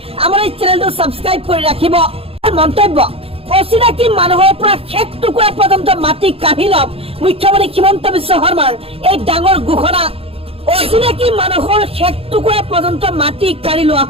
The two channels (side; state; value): left; late; 0.28 ms